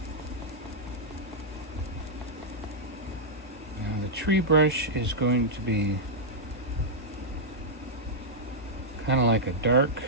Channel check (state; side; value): normal; both; correlation -0.07